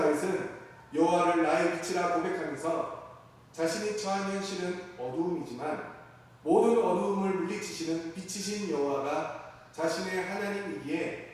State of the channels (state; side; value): identical; both; correlation 1.00